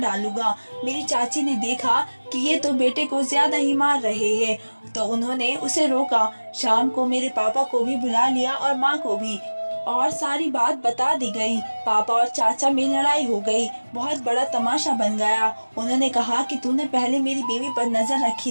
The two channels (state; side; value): inverted; both; correlation -1.00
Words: मेरी चाची ने देखा कि ये तो बेटे को ज्यादा ही मार रहे हैं, तो उन्होंने उसे रोका। शाम को मेरे पापा को भी बुला लिया और माँ को भी, और सारी बात बता दी गई। पापा और चाचा में लड़ाई हो गई, बहुत बड़ा तमाशा बन गया। उन्होंने कहा कि तूने पहले मेरी बीवी पर नजर रखी